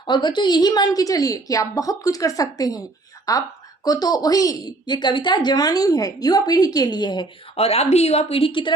और बच्चों, यही मान के चलिए कि आप बहुत कुछ कर सकते हैं। आपको तो वही, ये कविता जवानी है, युवा पीढ़ी के लिए है और आप भी युवा पीढ़ी की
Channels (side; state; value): left; quieter; 3.0 dB